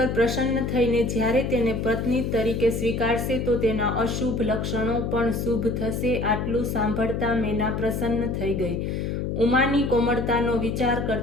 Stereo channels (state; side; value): noise; left; hum, 2 dB below the sound